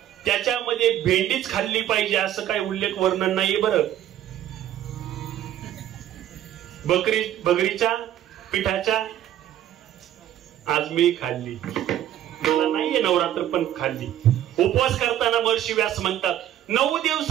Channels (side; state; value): left; quieter; 11.7 dB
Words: त्याच्यामध्ये भेंडीच खाल्ली पाहिजे असं काही उल्लेख वर्णन नाहीये. बरं, बकरीच्या पिठाच्या आज मी खाल्ली, मला नाहीये नवरात्र पण खाल्ली. उपवास करताना महर्षी व्यास म्हणतात 9